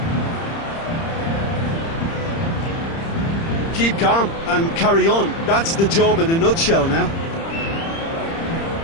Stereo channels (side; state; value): right; late; 30 ms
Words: keep calm and carry on. That's the job in a nutshell now.